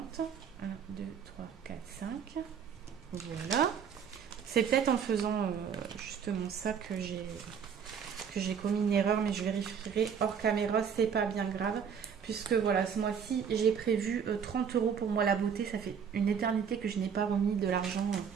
1, 2, 3, 4, 5. Voilà. C'est peut-être en faisant justement ça que j'ai commis une erreur, mais je vérifierai hors caméra, c'est pas bien grave. Puisque voilà, ce mois-ci, j'ai prévu 30 euros pour moi la beauté. Ça fait une éternité que je n'ai pas remis de l'argent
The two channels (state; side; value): quieter; left; 7.2 dB